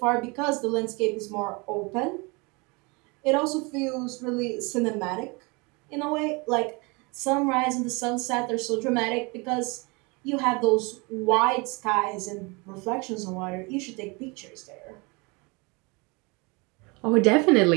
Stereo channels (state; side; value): quieter; left; 28.5 dB